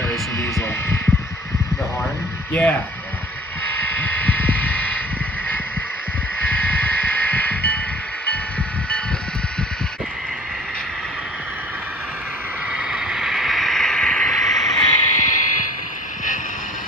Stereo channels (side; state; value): both; normal; correlation 0.47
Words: diesel. The horn? Yeah.